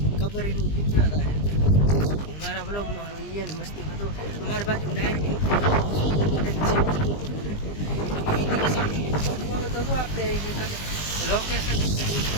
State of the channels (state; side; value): late; right; 20 ms